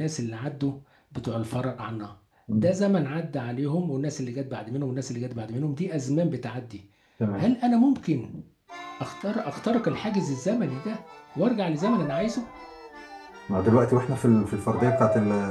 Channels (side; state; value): both; identical; correlation 1.00